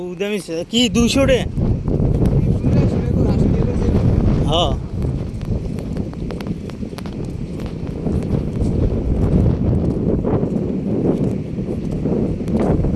কি 200 টাকা? হ্যাঁ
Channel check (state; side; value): identical; both; correlation 1.00